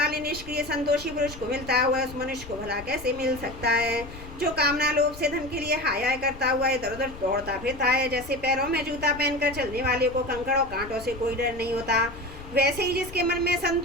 निष्क्रिय संतोषी पुरुष को मिलता हुआ उस मनुष्य को भला कैसे मिल सकता है। जो कामना लोभ से धन के लिए हाय हाय करता हुआ इधर उधर दौड़ता फिरता है, जैसे पैरों में जूता पहनकर चलने वाले को कंकड़ और कांटों से कोई डर नहीं होता, वैसे ही जिसके मन में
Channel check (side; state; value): left; noise; rumble, 15 dB below the sound